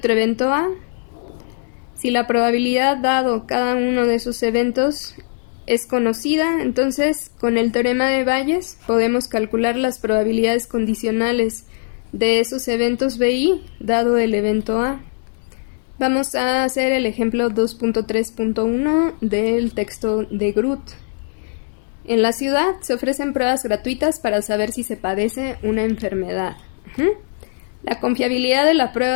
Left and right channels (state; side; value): silent; right; digital silence